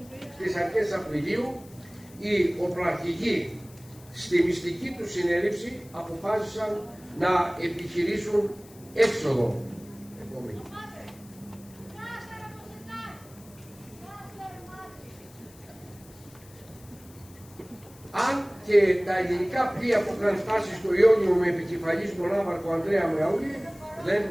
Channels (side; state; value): left; noise; hiss, 24 dB below the sound